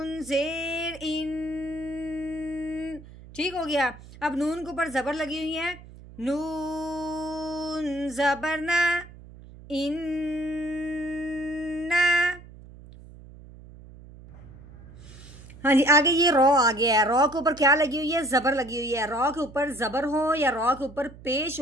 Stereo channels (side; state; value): right; noise; hum, 18 dB below the sound